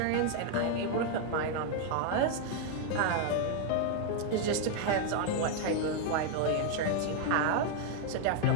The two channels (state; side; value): different; both; correlation 0.00